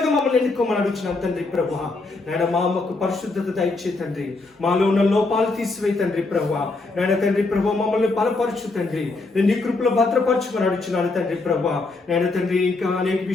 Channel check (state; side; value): quieter; right; 3.4 dB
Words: మమ్మల్ని ఎన్నుకోమని అడుగుతున్నాను తండ్రి ప్రభా. నేను మాకు పరిశుద్ధత దయచే తండ్రి, మాలో ఉన్న లోపాలు తీసివే తండ్రి ప్రభా. నేను తండ్రి ప్రభా, మమ్మల్ని బలపరచు తండ్రి. నేను నీ కృపలో భద్రపరచుమని అడుగుతున్నాను తండ్రి ప్రభా. నేను తండ్రి, ఇంకా అనేక